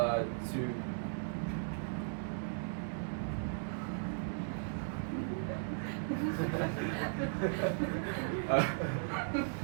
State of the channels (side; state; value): left; silent; digital silence